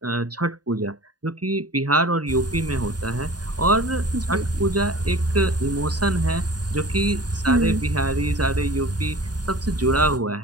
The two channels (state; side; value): late; left; 0.69 ms